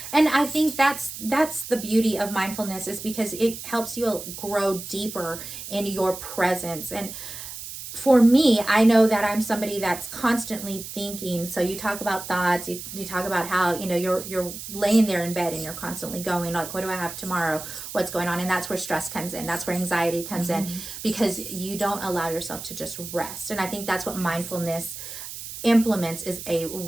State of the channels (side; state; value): right; noise; hiss, 10 dB below the sound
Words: And I think that's the beauty of mindfulness, is because it helps you grow deeper in your presence. And for me, I know that I'm somebody that's constantly thinking. So you talk about thoughts, you talk about how, you're laying there in bed and you're constantly going like, what do I have tomorrow? What's going on? And that's where stress comes in. That's where anxiety comes in, because you don't allow yourself to just rest. And I think that's what mindfulness implements, is a